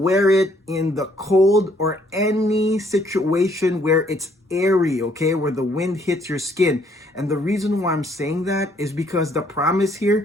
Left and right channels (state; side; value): normal; both; correlation 0.66